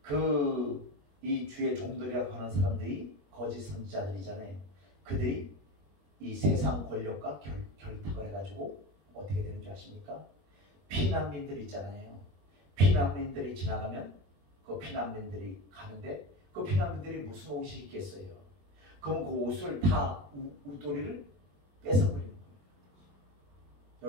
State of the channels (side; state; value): left; late; 21 ms